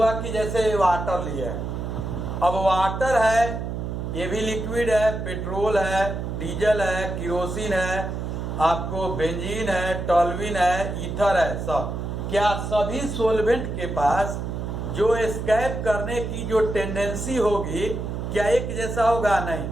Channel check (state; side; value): noise; right; hum, 4 dB below the sound